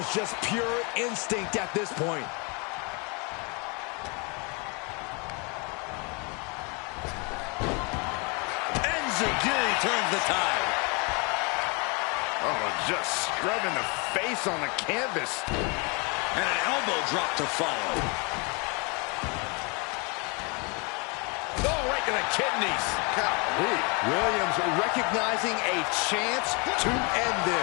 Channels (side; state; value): right; quieter; 31.8 dB